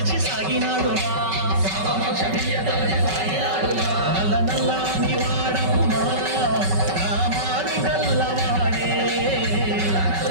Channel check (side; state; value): left; late; 5.3 ms